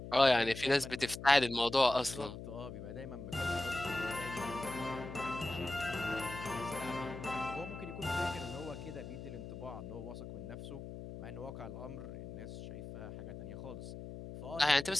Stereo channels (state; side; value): noise; left; hum, 10 dB below the sound